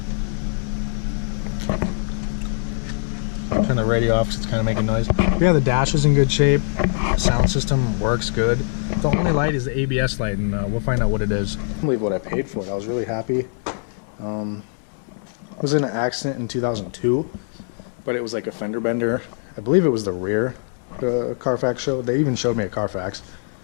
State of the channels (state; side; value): silent; right; 64 dB below the other